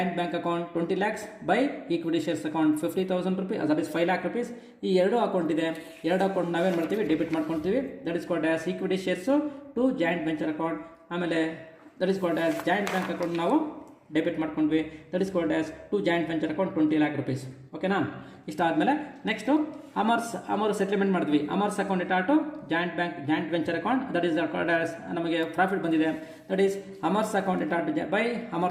bank account 20 lakhs by equity shares account 50,000 rupees that is 5 lakh rupees. ಈ 2 ಅಕೌಂಟ್ ಇದೆ. 2 ಅಕೌಂಟ್ ನಾವೇನು ಮಾಡ್ತೀವಿ? ಡೆಬಿಟ್ ಮಾಡ್ಕೊಳ್ತೀವಿ. That is called as equity shares to joint venture account. ಆಮೇಲೆ that is called as joint bank account ನಾವು ಡೆಬಿಟ್ ಮಾಡ್ಕೊಂಡ್ವಿ. That is called as to joint venture account 20 lakh rupees. ಓಕೆನಾ? ಇಷ್ಟ ಆದಮೇಲೆ ನೆಕ್ಸ್ಟು ಅಮರ್ ಸೆಟ್ಲ್ಮೆಂಟ್ ಮಾಡಿದ್ವಿ. Amar's account data to joint venture account that is called as ನಮಗೆ ಪ್ರಾಫಿಟ್ ಬಂದಿದೆ. That is Amar's account data to by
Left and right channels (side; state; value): both; identical; correlation 1.00